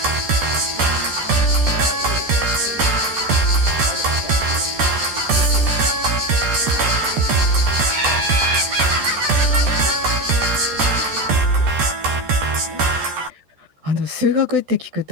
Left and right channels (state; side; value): late; left; 13 ms